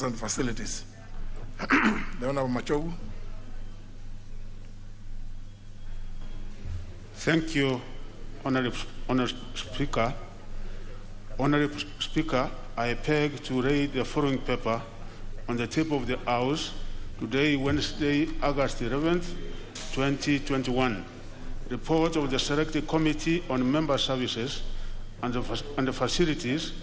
and Facilities. The Honorable Machogu. Thank you, Honorable Speaker. Honorable Speaker, I beg to read the following paper on the table of the House today, Wednesday, August 11th, 2021. Report of the Selected Committee on Member Services and the Facilities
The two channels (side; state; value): both; identical; correlation 1.00